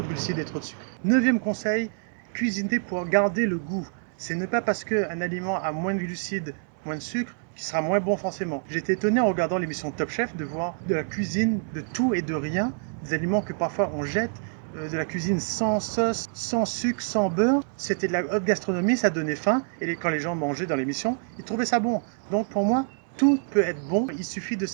de glucides et trop de sucre. 9e conseil, cuisiner pour garder le goût. Ce n'est pas parce qu'un aliment a moins de glucides, moins de sucre, qu'il sera moins bon forcément. J'étais étonné en regardant l'émission Top Chef de voir de la cuisine de tout et de rien, des aliments que parfois on jette, de la cuisine sans sauce, sans sucre, sans beurre. C'était de la haute gastronomie, ça donnait faim, et quand les gens mangeaient dans l'émission, ils trouvaient ça bon. Donc pour moi, tout peut être bon, il suffit de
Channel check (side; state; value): left; silent; 60 dB below the other